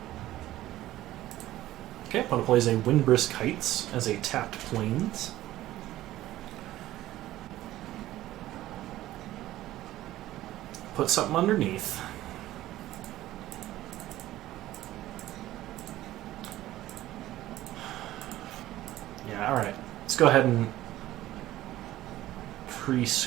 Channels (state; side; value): quieter; left; 15.0 dB